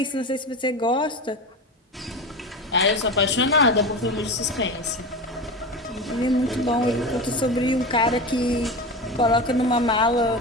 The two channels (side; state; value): both; normal; correlation 0.25